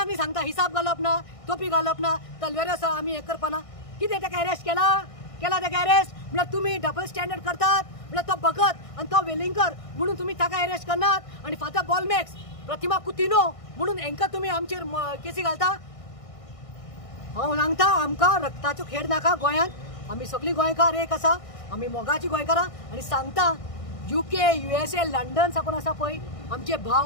न्ही सांगता हिसाब घालप ना, टोपी घालप ना, तलवार आसा आमी हें करपाना. कितें ताका अरेस्ट केला ताका अरेस्ट? म्हळ्यार तुमी डबल स्टँडर्ड करतात. म्हळ्यार तो भगत आनी तो वेलिंगर म्हणून तुमी ताका अरेस्ट करनात. आनी फादर बॉलमॅक्स, प्रतिमा कुतिनो म्हणून हांकां तुमी आमचेर केसी घालता. हांव सांगता आमकां रक्ताचो खेळ नाका गोंयांत. आमी सगळीं गोंयकार एक आसा, आमी मोगाची गोंयकारां. आनी सांगता UK, USA, लंडन साकून आसा पळय आमचे भाव,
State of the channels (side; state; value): right; late; 1.6 ms